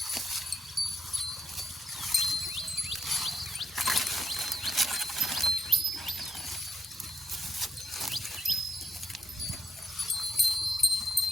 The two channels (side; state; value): both; normal; correlation 0.77